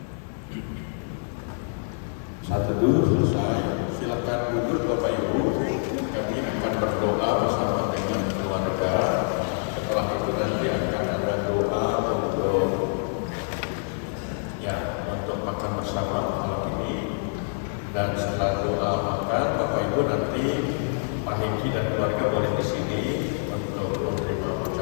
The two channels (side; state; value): right; silent; digital silence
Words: Saat teduh selesai, silakan duduk Bapak Ibu. Kami akan berdoa bersama dengan keluarga. Setelah itu nanti akan ada doa untuk makan bersama malam ini. Dan setelah doa makan, Bapak Ibu nanti Pak Hengki dan keluarga boleh di sini untuk menerima